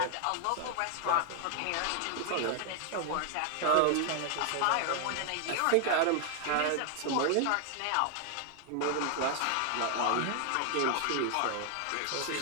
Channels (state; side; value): different; both; correlation 0.00